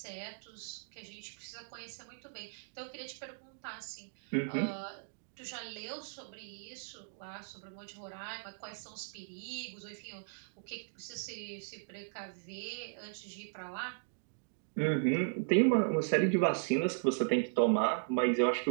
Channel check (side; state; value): left; silent; digital silence